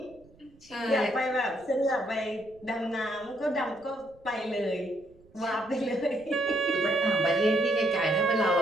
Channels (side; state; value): right; noise; rumble, 28 dB below the sound